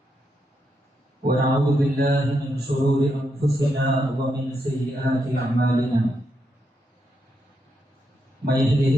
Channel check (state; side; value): normal; both; correlation 0.82